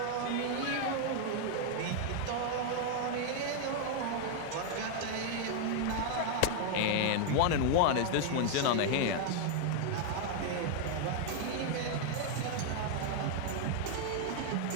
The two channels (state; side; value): different; both; correlation 0.00